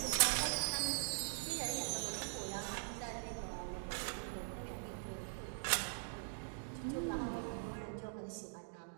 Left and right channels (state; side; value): silent; left; digital silence